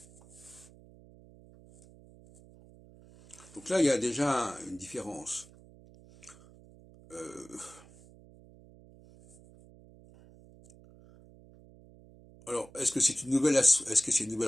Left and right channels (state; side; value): noise; right; hum, 23 dB below the sound